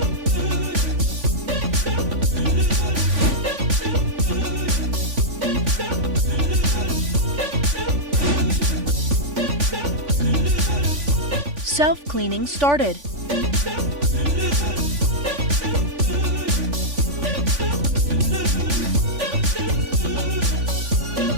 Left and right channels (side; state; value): left; late; 3.5 ms